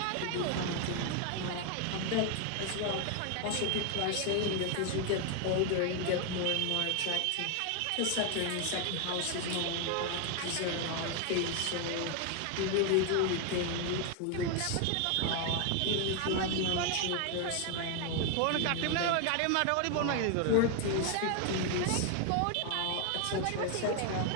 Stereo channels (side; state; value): both; different; correlation 0.01